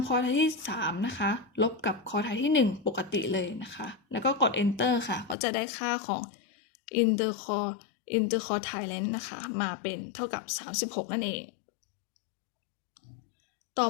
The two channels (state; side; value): drops out; right; at 5.4 s